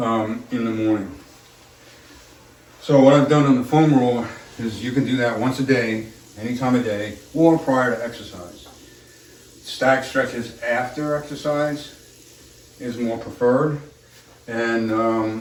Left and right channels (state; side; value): identical; both; correlation 1.00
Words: the morning. So what I've done on the foam roller is you can do that once a day, any time of day, or prior to exercise. Static stretches after exercise is more preferred, and